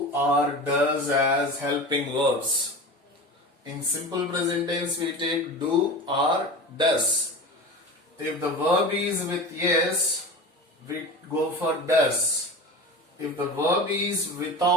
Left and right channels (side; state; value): both; normal; correlation 0.31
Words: or does as helping verbs. In simple present tense, we take do or does. If the verb is with yes, we go for does. If the verb is